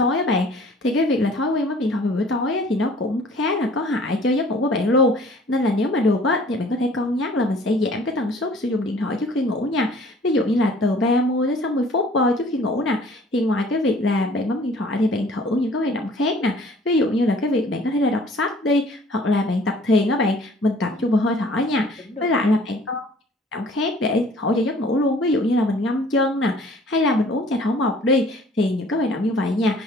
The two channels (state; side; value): normal; both; correlation 0.52